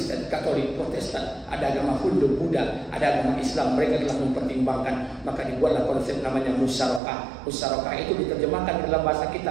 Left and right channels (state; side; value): drops out; left; at 7.0 s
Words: Katolik, Protestan, ada agama Hindu, Buddha, ada agama Islam. Mereka telah mempertimbangkan, maka dibuatlah konsep namanya musyarakah. Musyarakah itu diterjemahkan dalam bahasa